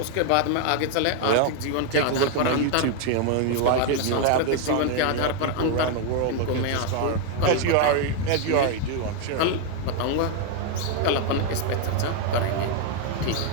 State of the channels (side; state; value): both; different; correlation 0.00